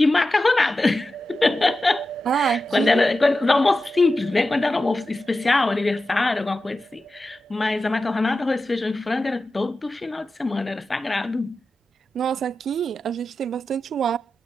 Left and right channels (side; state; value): both; normal; correlation 0.92